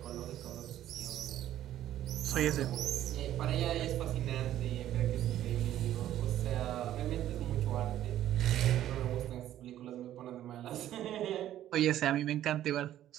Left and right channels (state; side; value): quieter; left; 12.4 dB